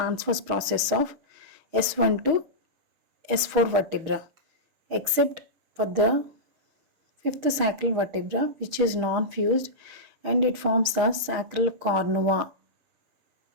process of S1 to S4 vertebra, except for the fifth sacral vertebra, which is non-fused, and it forms the sacral cornua.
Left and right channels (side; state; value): left; late; 6.4 ms